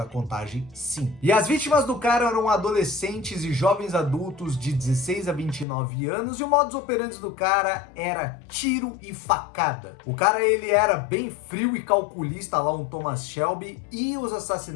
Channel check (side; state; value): right; drops out; at 5.7 s